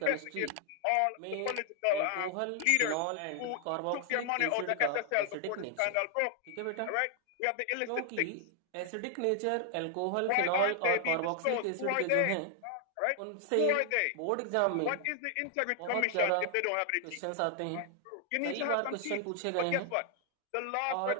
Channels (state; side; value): different; both; correlation 0.00